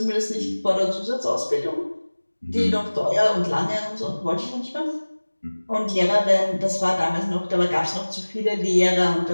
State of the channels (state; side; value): inverted; both; correlation -1.00